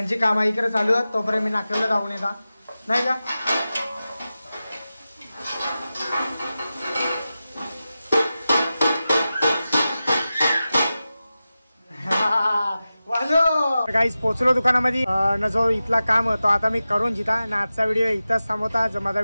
कामं इकडे चालू आहेत. तोपर्यंत मी नाक्याला जाऊन येता नाही का. गाईस पोचलो दुकानामध्ये. न जो इथला काम होतो आता मी करून जिता ना. आजचा व्हिडिओ इथंच थांबवता. जर माझा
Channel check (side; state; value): both; inverted; correlation -0.94